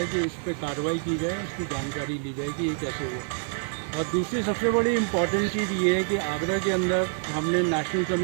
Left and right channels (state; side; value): silent; left; 60 dB below the other